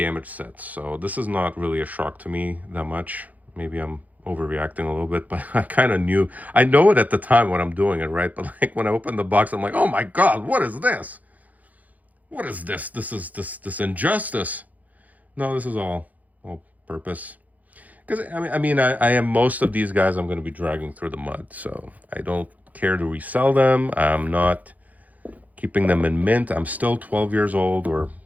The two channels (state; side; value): late; left; 0.078 ms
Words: sets. So this is not really a shock to me that much. Maybe I'm overreacting a little bit, but I kind of knew. I know it at the time when I'm doing it, right? But like when I open the box, I'm like, oh my God, what is this? What is this? This is this injustice. No, this is all purpose. Because I am most of these guys I'm going to be dragging through the mud, so I don't care to resell them. I'm not keeping them in mint. I'm still 12 years old, or,